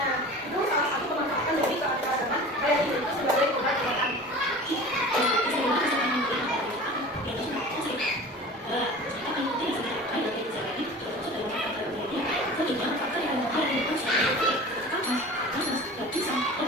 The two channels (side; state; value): both; normal; correlation 0.38